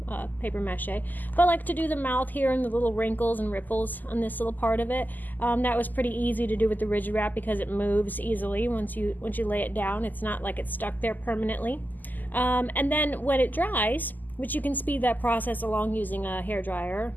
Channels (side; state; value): right; late; 0.085 ms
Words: paper mache. But I like to do the mouth here and the little wrinkles and ripples on this little part of it. That was pretty easy to do with the Rigid Wrap because it moves easily once you lay it down. It's not like it's stuck there permanently. And then when it dries, which you can speed that process along using a hairdryer